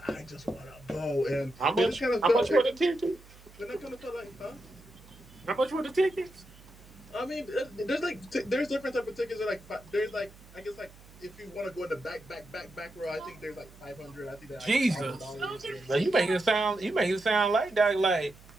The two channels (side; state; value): right; noise; hum, 22 dB below the sound